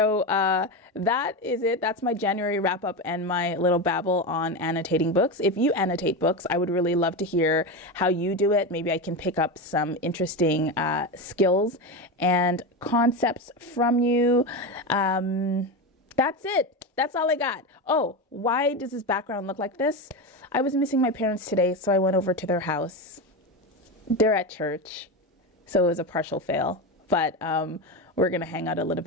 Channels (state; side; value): normal; both; correlation 0.17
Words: that is it. That's my January wrap up and my little babble on annotating books. If you annotate books, I would really love to hear how you do it. Maybe I can pick up some interesting skills and concepts from you. That's it. That's all I got. Oh, why does this background look like this? I was missing my parents today, so I went over to their house. They're at church, so it was a partial fail. But we're going to hang out a little